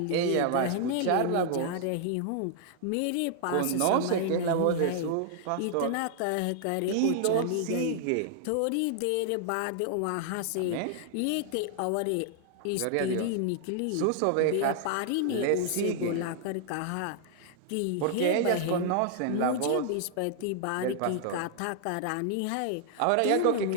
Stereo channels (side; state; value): both; different; correlation -0.01